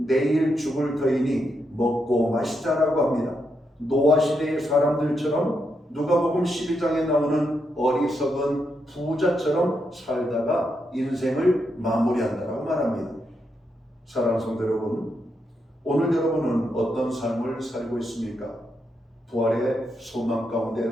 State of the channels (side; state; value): both; normal; correlation 0.82